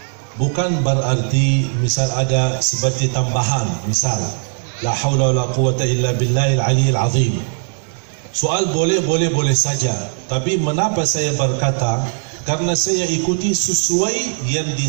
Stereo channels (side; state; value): left; silent; 67 dB below the other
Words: bukan berarti misal ada seperti tambahan, misal la haula wala quwata illa billahil aliyyil azim. Soal boleh saja. Tapi mengapa saya berkata? Karena saya ikuti sesuai yang